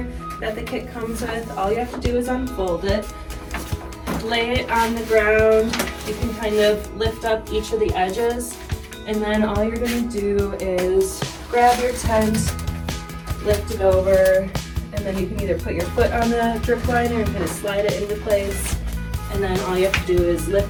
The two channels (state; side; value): identical; both; correlation 1.00